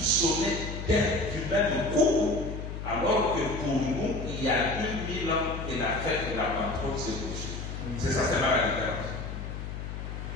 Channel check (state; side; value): noise; left; hum, 7 dB below the sound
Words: du même coup, alors que pour nous, il y a 2000 ans que la fête de la Pentecôte s'est poursuivie. C'est ça, c'est là la différence.